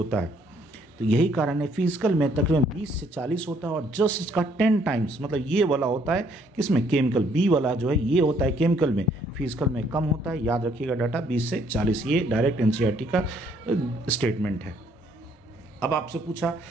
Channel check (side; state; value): both; normal; correlation 0.66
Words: है। तो यही कारण है फिजिकल में तकरीबन 20 से 40 होता है, और जस्ट इसका 10 टाइम्स, मतलब ये वाला होता है किसमें, केमिकल, बी वाला जो है ये होता है केमिकल में, फिजिकल में कम होता है। याद रखिएगा डाटा 20 से 40, ये डायरेक्ट एनसीईआरटी का स्टेटमेंट है। अब आपसे पूछा,